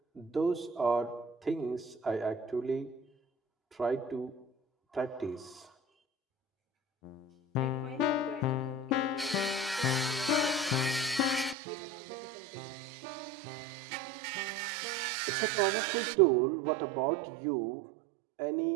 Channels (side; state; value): left; drops out; at 11.6 s